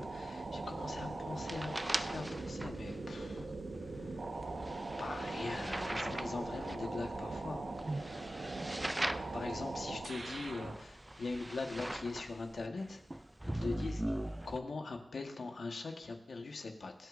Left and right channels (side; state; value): both; normal; correlation 0.94